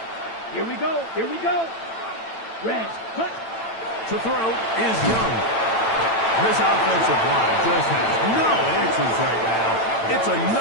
Here we go. Here we go. Red. Cut. To throw is Young. This offensive line just has no answers right now. It's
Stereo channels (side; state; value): right; late; 8.9 ms